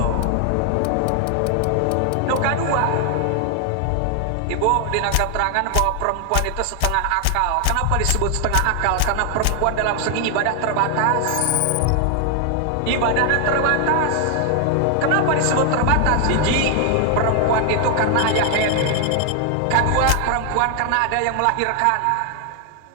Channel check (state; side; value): different; both; correlation 0.00